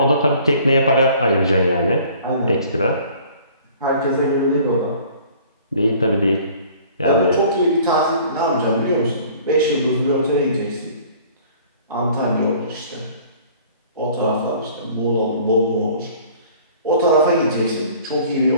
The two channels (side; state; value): both; inverted; correlation -0.52